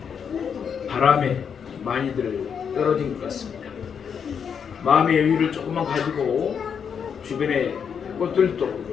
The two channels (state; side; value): quieter; right; 7.1 dB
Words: 바람에 많이들 떨어진 것 같습니다. 마음의 여유를 조금만 가지고 주변의 꽃들도